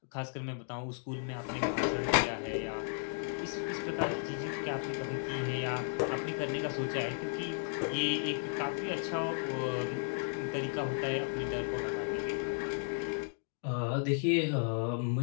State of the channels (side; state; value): right; silent; digital silence